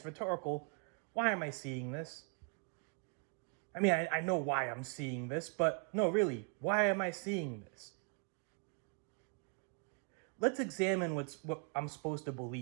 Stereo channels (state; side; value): quieter; left; 37.4 dB